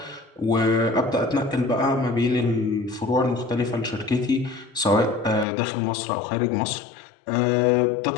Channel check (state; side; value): drops out; right; at 5.5 s